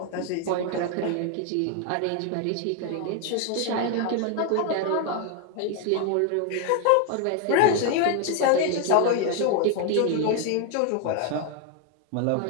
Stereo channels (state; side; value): different; both; correlation 0.01